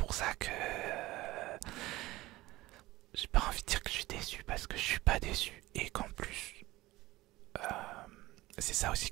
ça que j'ai pas envie de dire que je suis déçu parce que je suis pas déçu, et c'est ça aussi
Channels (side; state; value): left; quieter; 18.5 dB